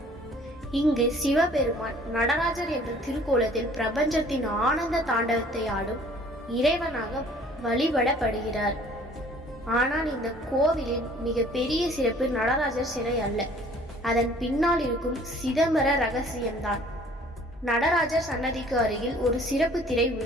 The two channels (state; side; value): normal; both; correlation 0.54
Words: இங்கு சிவபெருமான் நடராஜர் என்ற திருக்கோலத்தில் பிரபஞ்சத்தின் ஆனந்த தாண்டவத்தை ஆடும் இறைவனாக வழிபடப்படுகிறார். ஆனால் இந்த கோவிலின் மிக பெரிய சிறப்பு நடராஜர் சிலை அல்ல, அதன் பின்னால் இருக்கும் சிதம்பர ரகசியம்தான். நடராஜர் சன்னதிக்கு அருகில் ஒரு சிறப்பு திரை